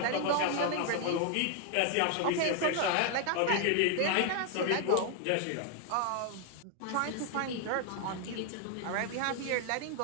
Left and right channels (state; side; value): different; both; correlation 0.00